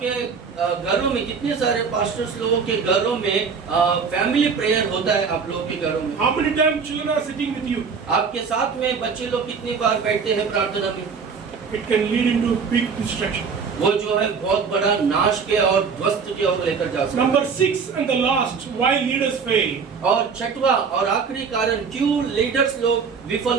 घरों में कितने सारे पास्टर्स लोगों के घरों में फैमिली प्रेयर होता है? आप लोगों के घरों में How many times children are sitting with you? आपके साथ में बच्चे लोग कितनी बार बैठते हैं प्रार्थना में? It can lead into big destruction. वो जो है बहुत बड़ा नाश के और ध्वस्त की ओर लेकर जा सकता है। Number 6 and the last, why leaders fail. और छठवा और आखिरी कारण क्यों लीडर्स लोग विफल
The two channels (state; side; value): quieter; left; 5.7 dB